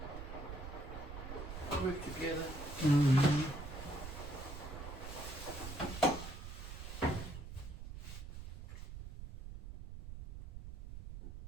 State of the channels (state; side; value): noise; right; rumble, 9 dB below the sound